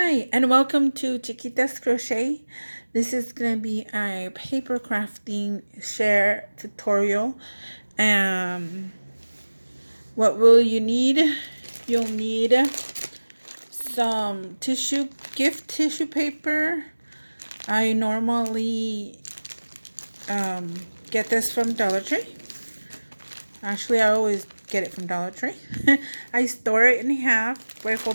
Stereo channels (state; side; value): inverted; both; correlation -1.00